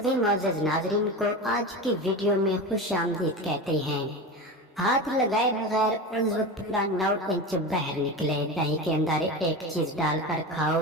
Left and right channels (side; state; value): both; normal; correlation 0.26